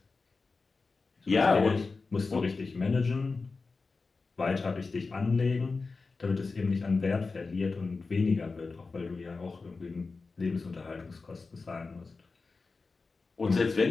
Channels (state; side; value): quieter; right; 4.1 dB